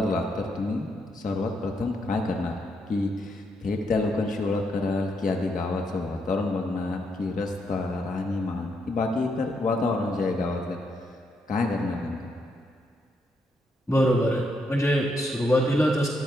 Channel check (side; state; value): both; normal; correlation 0.78